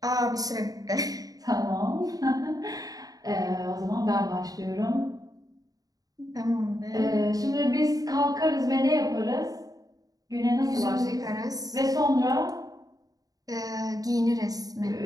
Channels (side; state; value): left; late; 0.18 ms